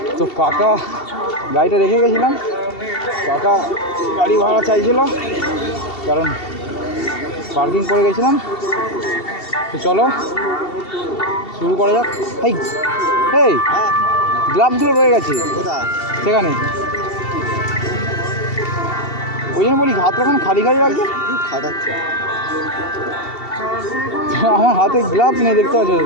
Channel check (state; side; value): late; right; 2.7 ms